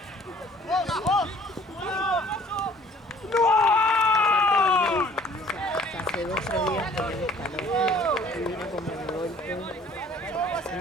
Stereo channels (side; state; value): both; normal; correlation 0.54